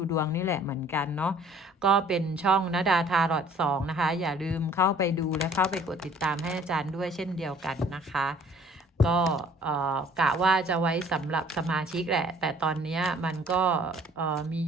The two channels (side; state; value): both; normal; correlation 0.55